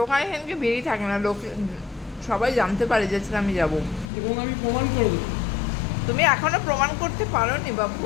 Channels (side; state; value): right; drops out; at 4.1 s